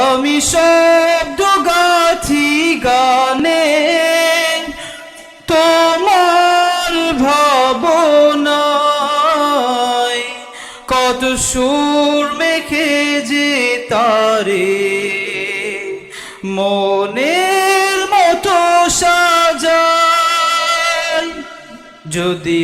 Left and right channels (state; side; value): identical; both; correlation 1.00